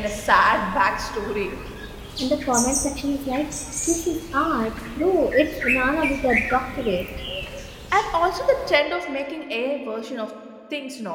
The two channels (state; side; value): identical; both; correlation 1.00